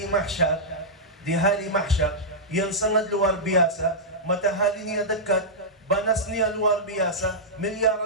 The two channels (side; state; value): both; normal; correlation -0.11